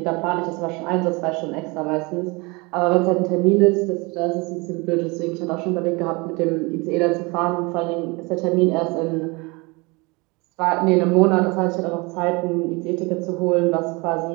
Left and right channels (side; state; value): left; quieter; 26.8 dB